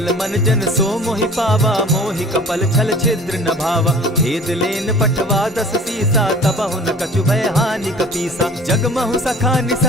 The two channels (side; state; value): both; normal; correlation 0.45